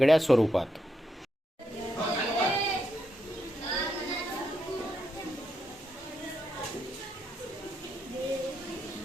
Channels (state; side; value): normal; both; correlation 0.81